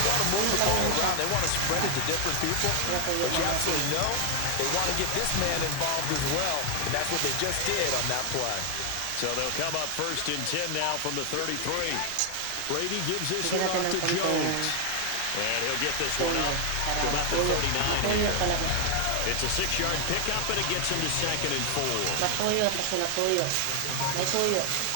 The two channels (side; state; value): both; different; correlation 0.00